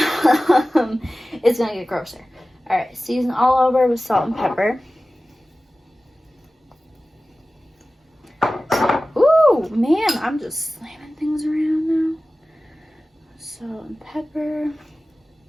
gonna get grosser. All right, season all over with salt and pepper. Ooh, man, I'm just slamming things around now. Salt and pepper.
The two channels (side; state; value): both; normal; correlation 0.96